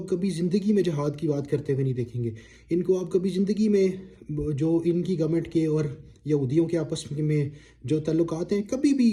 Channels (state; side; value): identical; both; correlation 1.00